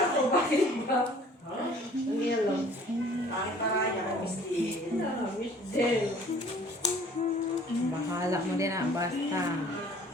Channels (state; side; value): normal; both; correlation 0.52